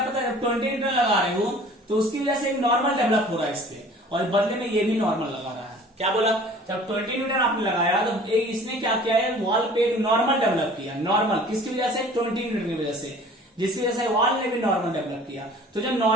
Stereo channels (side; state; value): both; normal; correlation 0.48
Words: पता है, 20 न्यूटन लगा रहे हो तो उसकी वजह से एक नॉर्मल डेवलप हो रहा है इस पे, और बदले में ये भी नॉर्मल लगा रहा है। क्या बोला, जब 20 न्यूटन आपने लगाया तो एक इसने क्या किया है, वॉल पे एक नॉर्मल डेवलप किया, नॉर्मल किसकी वजह से, 20 न्यूटन की वजह से, जिसकी वजह से वॉल ने भी नॉर्मल डेवलप किया। तो जब